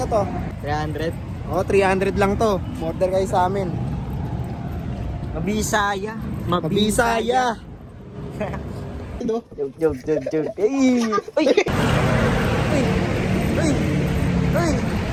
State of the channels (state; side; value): identical; both; correlation 1.00